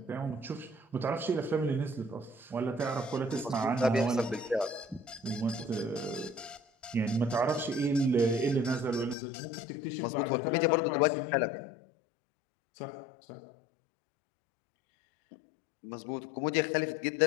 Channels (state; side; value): drops out; right; at 9.2 s